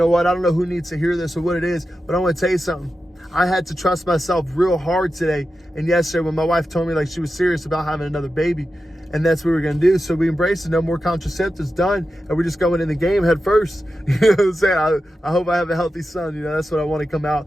what? I don't know who needs to hear this or what it is, but I want to tell you something. I had to trust myself real hard today and yesterday when my wife told me she was serious about having another baby. And that's what we're going to do. So we embrace it. No more contraceptives, done. And we're just going in the game head first. You know what I'm saying? I hope I have a healthy son. You know, that's what I want to come out.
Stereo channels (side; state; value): both; normal; correlation 0.91